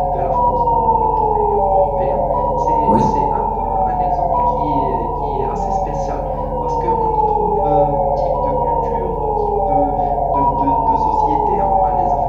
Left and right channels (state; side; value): identical; both; correlation 1.00